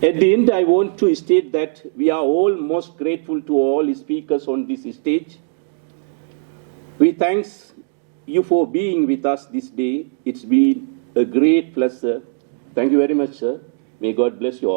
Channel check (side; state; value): left; silent; digital silence